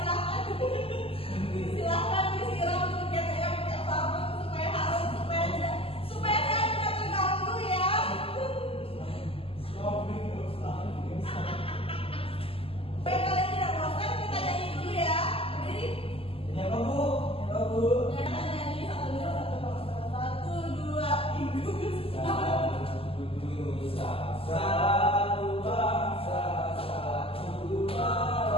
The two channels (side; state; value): right; late; 0.27 ms